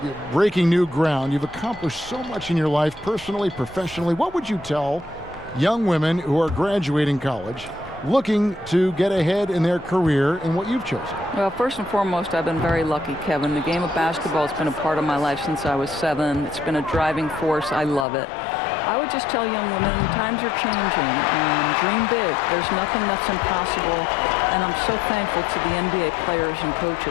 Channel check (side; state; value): right; drops out; at 18.1 s